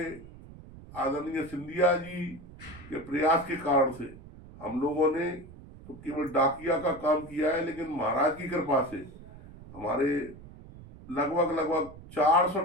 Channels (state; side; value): noise; right; rumble, 18 dB below the sound